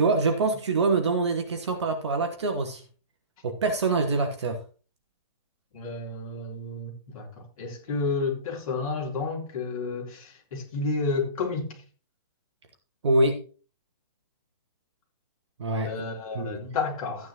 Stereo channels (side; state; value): both; inverted; correlation -0.37